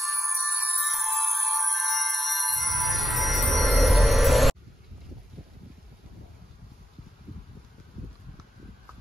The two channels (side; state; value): both; normal; correlation 0.90